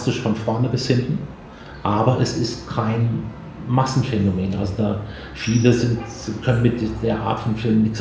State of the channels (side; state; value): both; identical; correlation 1.00